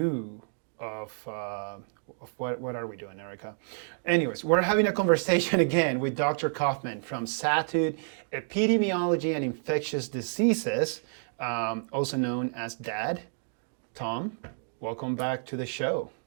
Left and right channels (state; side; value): silent; left; digital silence